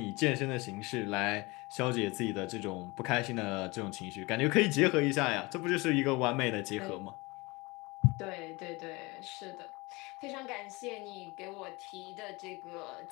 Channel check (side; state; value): right; quieter; 24.2 dB